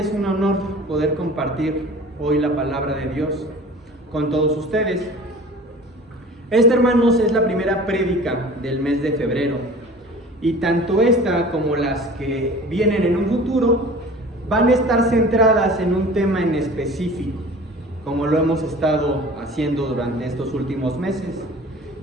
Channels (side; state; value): both; normal; correlation 0.42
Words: es un honor poder compartir hoy la palabra de Dios con todos ustedes. Esta, hermanos, es la primera prédica del mes de febrero, y tanto esta como las que vienen en un futuro van a estar centradas en un tema en específico, como lo hemos estado haciendo durante estos últimos meses.